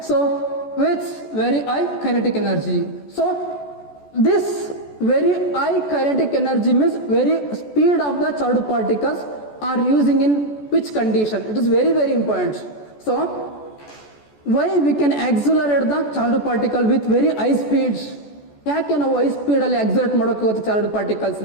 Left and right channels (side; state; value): right; late; 14 ms